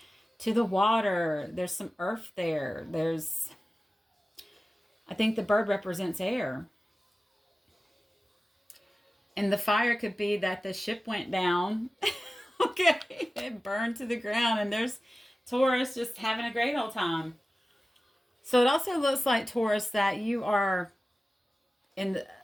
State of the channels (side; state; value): both; normal; correlation 0.96